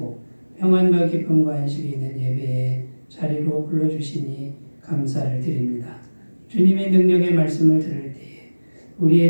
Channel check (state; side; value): inverted; both; correlation -1.00